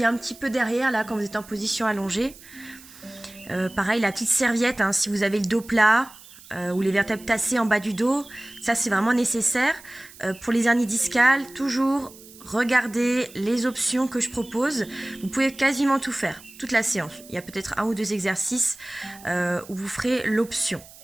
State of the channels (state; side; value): noise; right; hiss, 20 dB below the sound